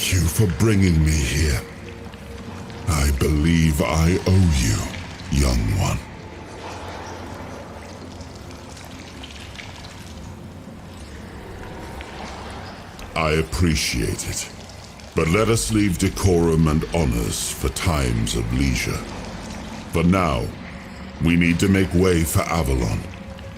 you for bringing me here. I believe I owe you, young one. I appreciate it. But let us leave decorum and honors for times of leisure. For now, we need to make way for Avalon.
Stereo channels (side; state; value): both; identical; correlation 1.00